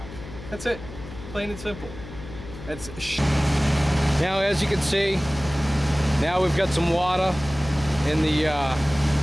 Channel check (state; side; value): noise; left; hum, 14 dB below the sound